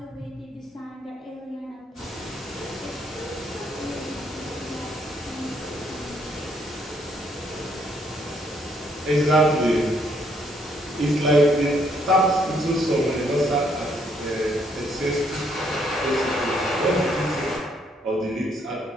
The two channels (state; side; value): normal; both; correlation 0.70